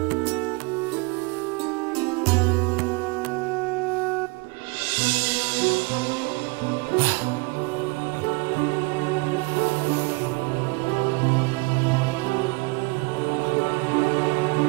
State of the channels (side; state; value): left; quieter; 26.4 dB